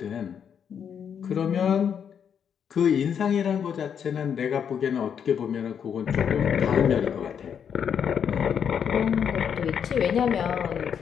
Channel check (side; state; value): right; quieter; 7.8 dB